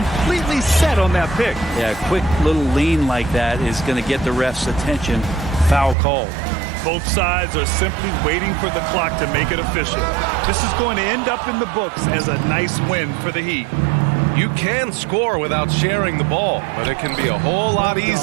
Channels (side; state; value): left; drops out; at 6.0 s